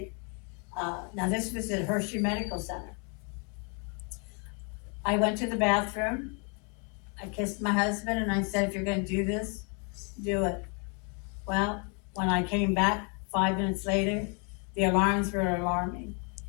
Now this was at Hershey Medical Center. I went to the bathroom, I kissed my husband and I said, if you're gonna do this, do it. Well, when I came back 5 minutes later, the alarms were alarming.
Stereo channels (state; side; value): quieter; right; 36.5 dB